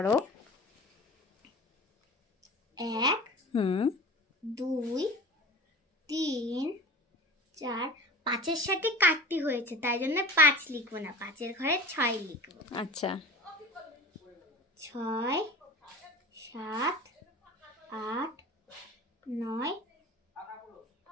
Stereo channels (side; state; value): both; normal; correlation 0.37